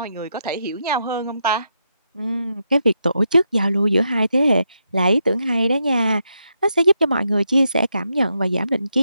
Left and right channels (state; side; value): inverted; both; correlation -0.82